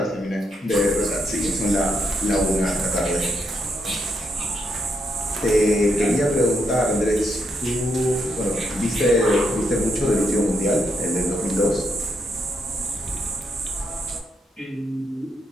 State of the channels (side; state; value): both; normal; correlation 0.79